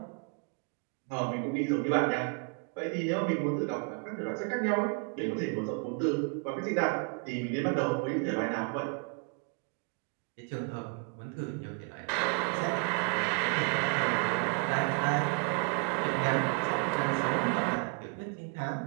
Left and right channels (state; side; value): quieter; left; 36.8 dB